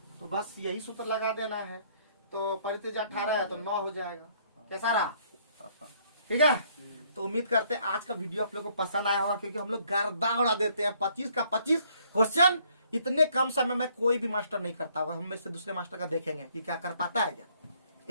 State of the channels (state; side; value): inverted; both; correlation -0.65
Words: तो बस यही सूत्र लगा देना है। तो परित्रिज्या 18 है तो 9 हो जाएगा। कैसा रहा? ठीक है, तो उम्मीद करते हैं आज का वीडियो आप लोग को पसंद आया होगा, क्योंकि हम लोग गर्दा उड़ा देते हैं। 25 का 25 क्वेश्चन इतने कम समय में कोई भी मास्टर नहीं करता होगा। हम में से दूसरे मास्टर का देखेंगे कि क्या कर पाता है क्या